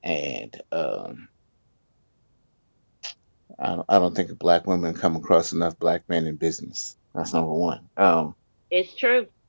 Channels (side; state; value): both; inverted; correlation -1.00